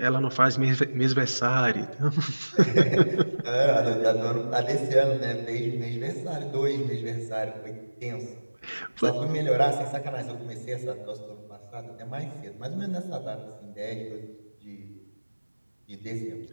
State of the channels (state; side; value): inverted; both; correlation -1.00